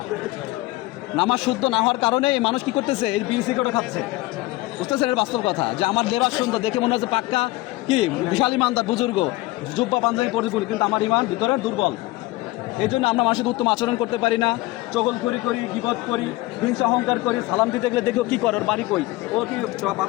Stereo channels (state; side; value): quieter; right; 19.6 dB